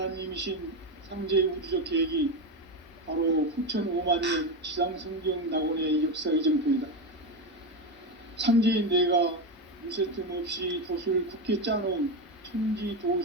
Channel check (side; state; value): both; normal; correlation 0.13